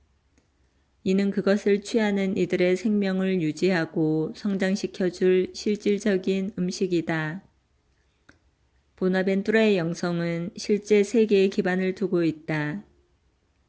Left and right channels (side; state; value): both; identical; correlation 1.00